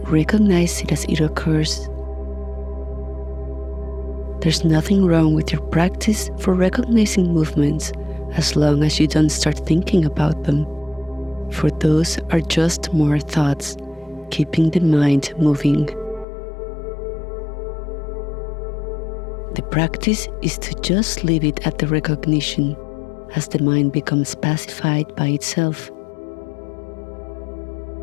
recognize it as it occurs. There's nothing wrong with your practice for recognizing movements as long as you don't start thinking about them, for those are just more thoughts, keeping the mind moving. The practice is to just leave it at the recognition as the mind becomes pacified by itself.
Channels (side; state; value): right; drops out; at 16.2 s